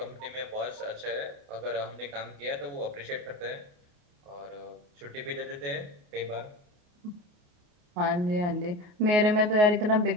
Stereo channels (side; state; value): left; late; 28 ms